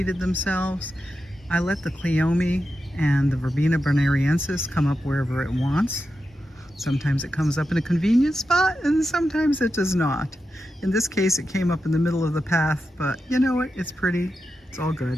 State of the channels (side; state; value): both; normal; correlation 0.89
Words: themselves. I let the Cleome and the Verbena bonariensis come up wherever it wants. Sometimes it comes up in a convenient spot and sometimes it does not. In this case it came up in the middle of the path, but you know what, it's pretty, it's all